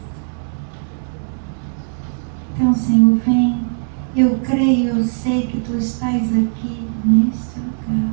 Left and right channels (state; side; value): silent; left; 67 dB below the other